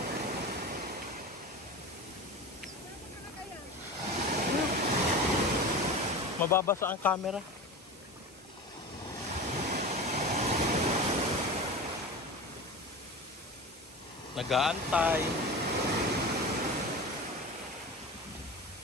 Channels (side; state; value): both; normal; correlation 0.30